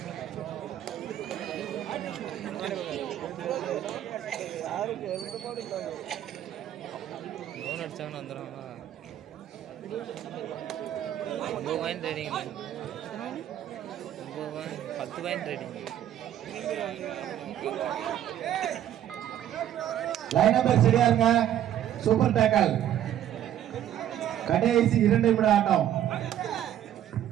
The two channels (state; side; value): quieter; left; 11.2 dB